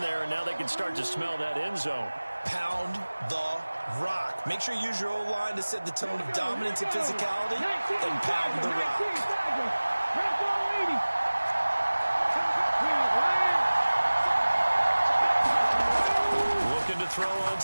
there, and now they can start to smell that end zone. Pound the rock. Make sure you use your O-line to set the tone of dominance and physicality, and pound the rock. Looking to throw on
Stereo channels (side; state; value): both; inverted; correlation -1.00